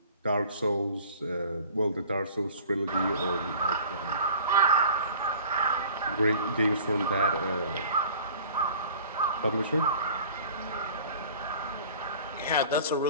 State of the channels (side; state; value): both; inverted; correlation -0.45